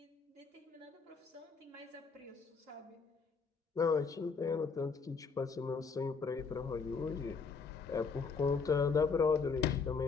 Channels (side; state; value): right; quieter; 5.1 dB